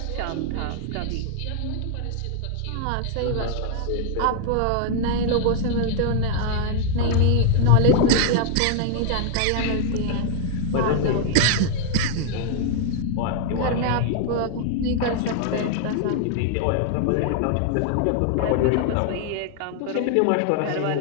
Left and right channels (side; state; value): both; different; correlation 0.00